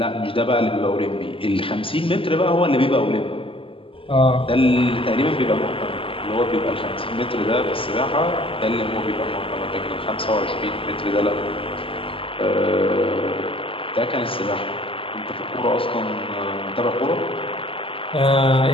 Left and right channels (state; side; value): late; right; 0.26 ms